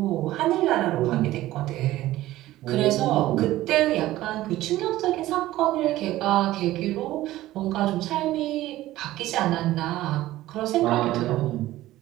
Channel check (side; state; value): left; quieter; 15.7 dB